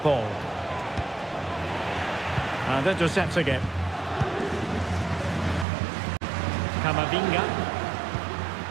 And intercepts again. Camavinga.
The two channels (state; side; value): drops out; left; at 5.7 s